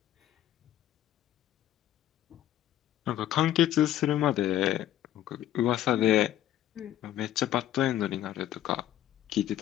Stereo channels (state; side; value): quieter; right; 12.5 dB